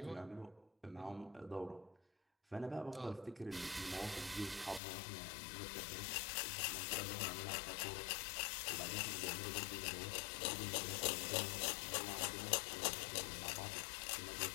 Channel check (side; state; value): right; drops out; at 4.8 s